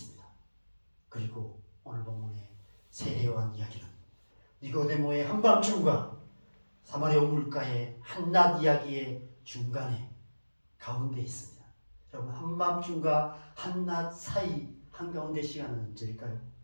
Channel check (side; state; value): both; inverted; correlation -1.00